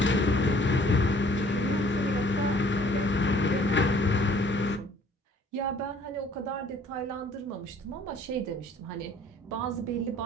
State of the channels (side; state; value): both; normal; correlation 0.56